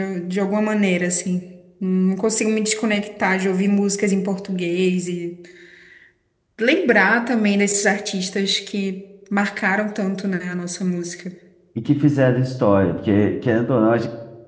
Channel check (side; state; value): both; identical; correlation 1.00